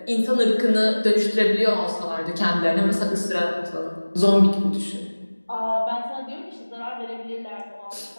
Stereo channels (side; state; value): both; inverted; correlation -1.00